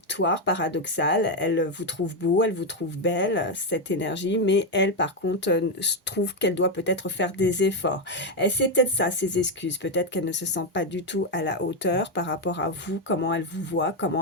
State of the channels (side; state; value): both; normal; correlation 0.05